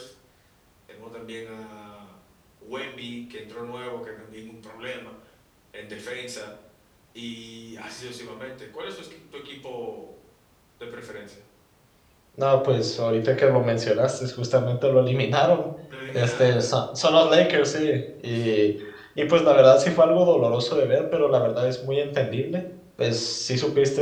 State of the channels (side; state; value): both; identical; correlation 1.00